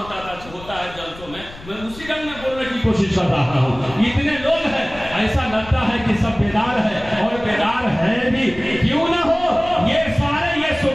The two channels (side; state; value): left; noise; rumble, 17 dB below the sound